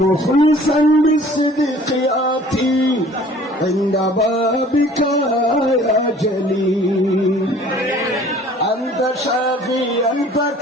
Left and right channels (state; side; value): normal; both; correlation 0.51